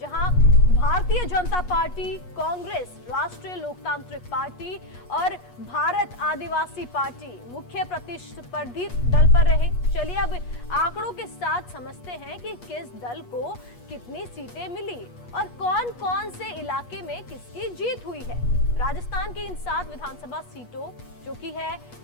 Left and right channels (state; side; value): late; right; 8.3 ms